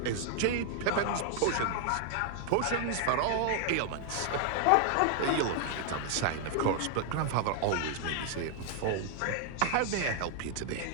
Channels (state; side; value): different; both; correlation 0.00